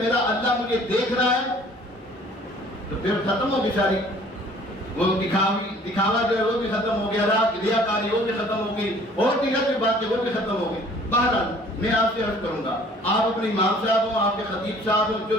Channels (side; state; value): both; normal; correlation 0.54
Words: اللہ مجھے دیکھ رہا ہے، تو پھر ختم ہوگی ساری وہ دکھاوا جو ہے وہ بھی ختم ہو گیا، ریاکاری وہ بھی ختم ہو گئی، اور دیگر بھی باتیں وہ بھی ختم ہو گئی. بہرحال میں آپ سے عرض کروں گا، آپ اپنے امام صاحب ہوں، آپ کے خطیب صاحب ہوں، جو